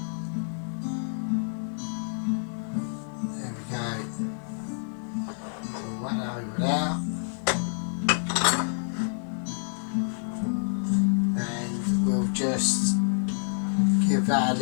out, and we'll just give that a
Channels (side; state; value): right; silent; digital silence